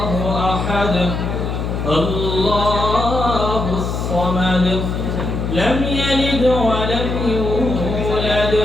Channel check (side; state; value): left; noise; hum, 2 dB below the sound